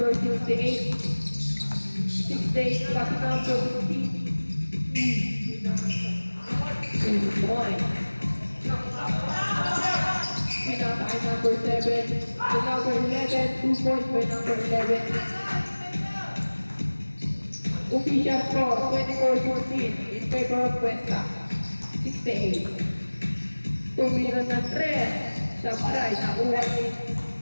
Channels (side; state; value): both; inverted; correlation -1.00